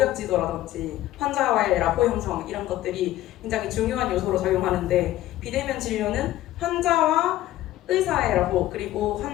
지도라든지 환자와의 라포 형성 이런 것들이 굉장히 중요한 요소로 작용하는데 비대면 진료는 환자와 의사의 라포 그리고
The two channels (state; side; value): quieter; right; 14.6 dB